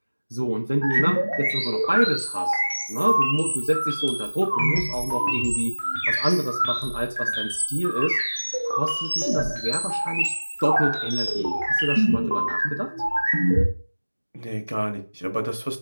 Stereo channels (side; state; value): both; inverted; correlation -1.00